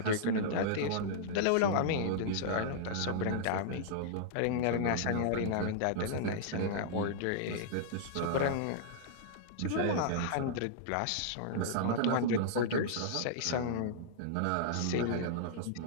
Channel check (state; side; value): different; both; correlation -0.01